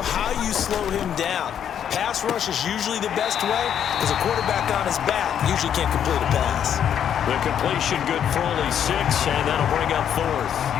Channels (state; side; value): quieter; right; 9.1 dB